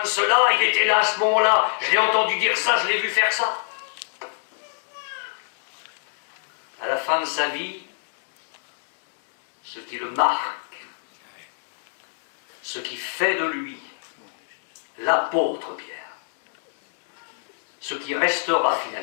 cela, il était là à ce moment-là, je l'ai entendu dire ça, je l'ai vu faire ça. À la fin de sa vie, ce qui le marque, ce qui fait de lui l'apôtre Pierre, ce qui restera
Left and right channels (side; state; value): right; silent; digital silence